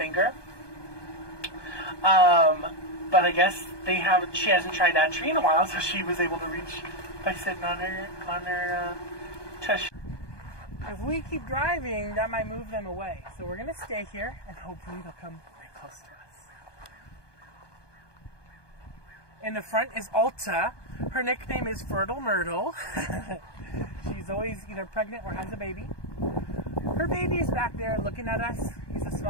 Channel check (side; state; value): right; late; 1.2 ms